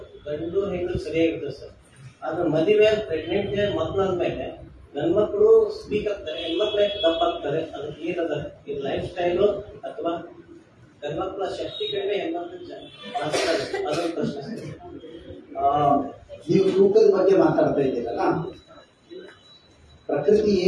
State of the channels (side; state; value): both; identical; correlation 1.00